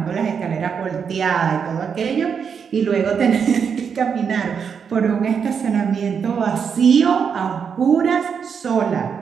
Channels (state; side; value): quieter; left; 6.7 dB